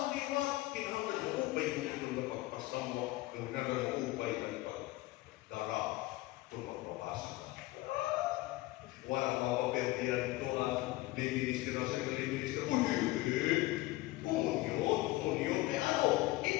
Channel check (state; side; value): quieter; right; 19.1 dB